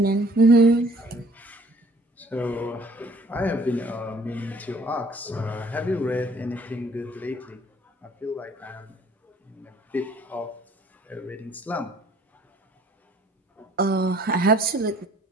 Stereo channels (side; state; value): both; normal; correlation 0.57